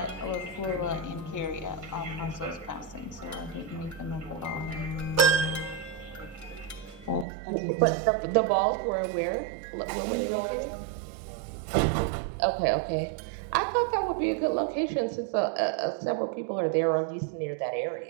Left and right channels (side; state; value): left; drops out; at 7.2 s